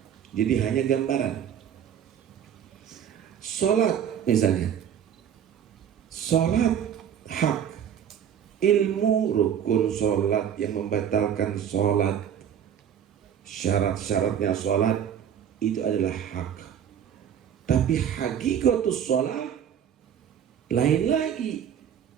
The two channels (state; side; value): quieter; left; 9.0 dB